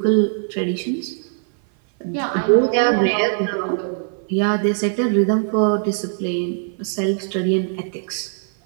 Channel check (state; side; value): silent; left; 57 dB below the other